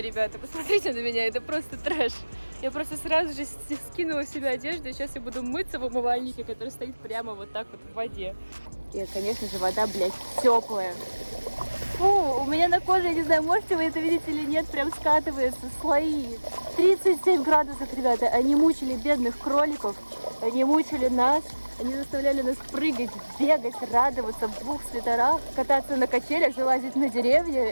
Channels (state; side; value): inverted; both; correlation -1.00